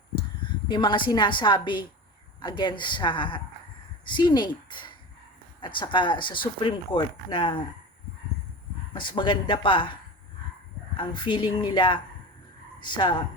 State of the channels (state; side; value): normal; both; correlation 0.30